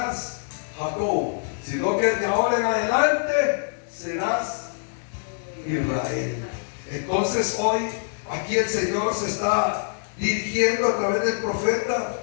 Jacob, sino que de ahora en adelante serás Israel. Entonces hoy aquí el Señor se está dirigiendo a través del profeta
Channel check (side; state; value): right; silent; digital silence